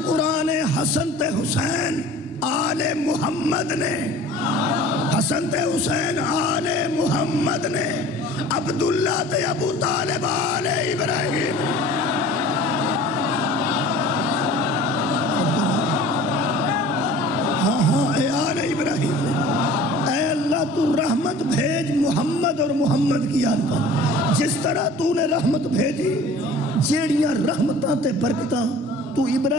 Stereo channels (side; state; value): both; normal; correlation 0.44